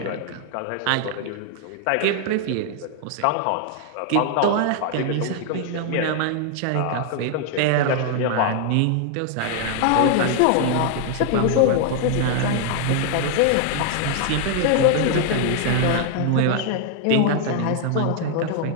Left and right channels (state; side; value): different; both; correlation 0.00